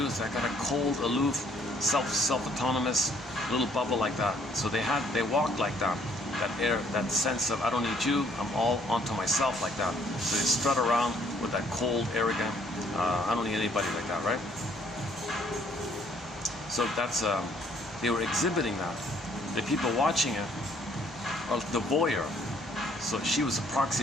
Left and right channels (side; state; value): both; normal; correlation 0.64